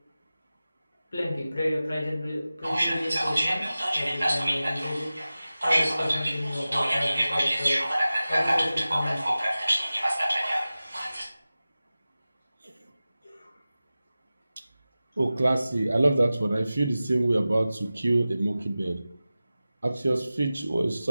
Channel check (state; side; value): inverted; both; correlation -0.96